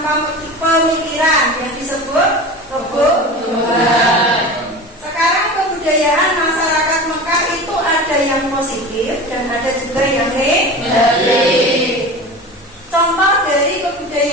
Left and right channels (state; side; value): normal; both; correlation 0.32